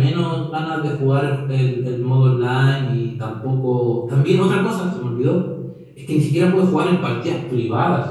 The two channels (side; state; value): both; identical; correlation 1.00